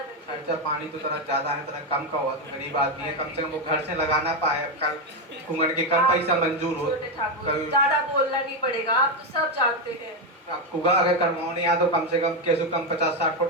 खर्चा पानी तो तरह ज्यादा है, तरह कम का हुआ तो गरीब आदमी है, कम से कम वो घर से लगाना पाए। कल कुंगड़ के कम पैसा मंजूर हो। छोटे ठाकुर कभी ज्यादा बोलना नहीं पड़ेगा, आप तो सब जानते हैं। अब कुगा अगर करवानी है तो कम से कम कैसे कम 50-60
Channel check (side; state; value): both; normal; correlation 0.07